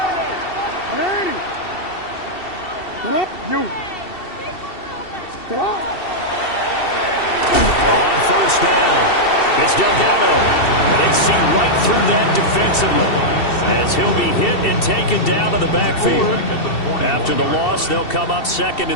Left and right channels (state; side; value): late; right; 2.7 ms